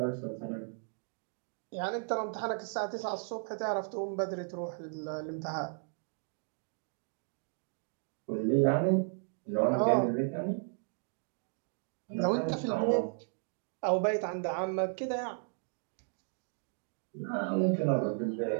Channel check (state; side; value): silent; left; 55 dB below the other